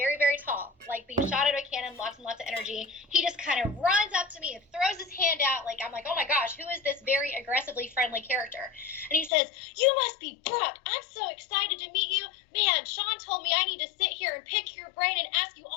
very tall, like being shot out of a cannon, lots and lots of energy. He just kind of runs up to me and throws his hand out. Like, I'm like, oh my gosh, who is this very aggressively friendly character? And he says, you must be Brooke. I'm so excited to meet you. Man, Sean told me I need to sit here and pick your brain and ask you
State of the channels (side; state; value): right; drops out; at 9.3 s